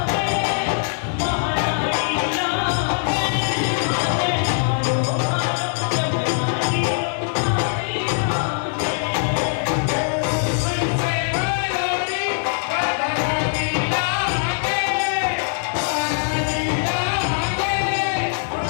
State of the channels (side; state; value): right; silent; digital silence